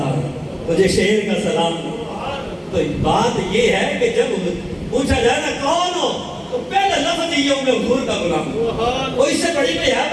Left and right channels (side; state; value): both; identical; correlation 1.00